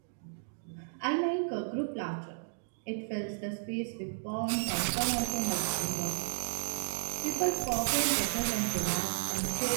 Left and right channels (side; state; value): left; silent; digital silence